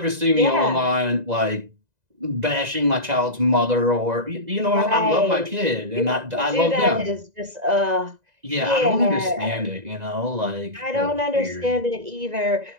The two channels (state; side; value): late; left; 2.0 ms